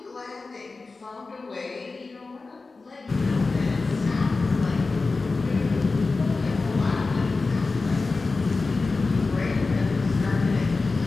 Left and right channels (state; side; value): quieter; right; 3.8 dB